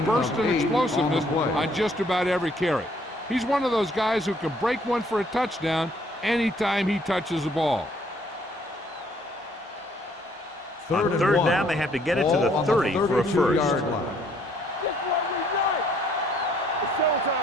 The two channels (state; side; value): normal; both; correlation 0.64